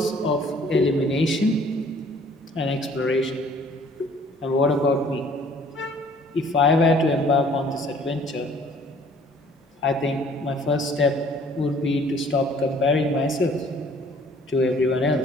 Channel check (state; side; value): normal; both; correlation 0.56